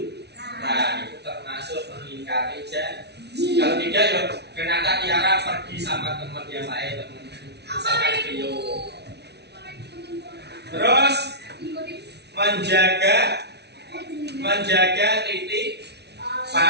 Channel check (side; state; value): left; late; 0.49 ms